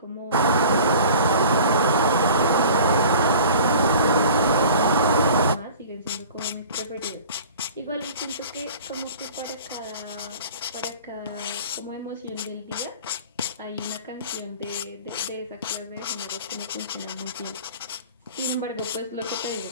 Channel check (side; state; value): both; inverted; correlation -0.43